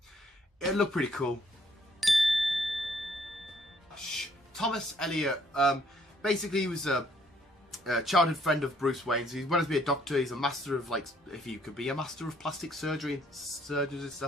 it'd look pretty cool. Thomas Elliot, basically he was a childhood friend of Bruce Wayne's. He wanted to be a doctor. He's a master of, like, if you could be a master of plastic surgery and surgeons and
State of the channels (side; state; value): both; normal; correlation 0.65